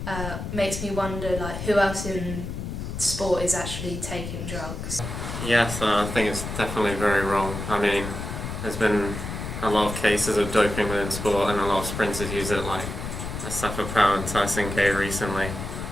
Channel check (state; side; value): noise; left; rumble, 6 dB below the sound